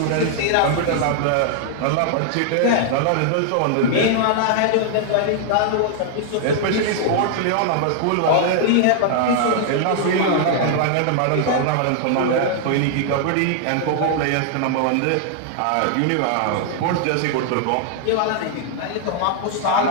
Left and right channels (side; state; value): both; different; correlation 0.00